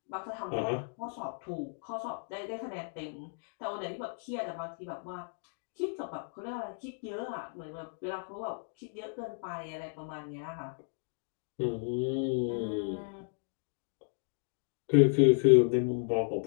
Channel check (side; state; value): right; silent; digital silence